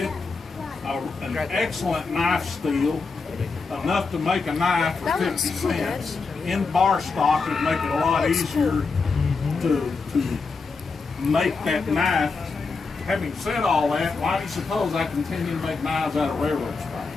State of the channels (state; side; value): quieter; right; 4.4 dB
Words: an excellent knife steel, enough to make a knife for 50 cents. In bar stock, it'd make it a lot easier to make that knife. Having said all that, why do you suppose I continue to make knives out of railroad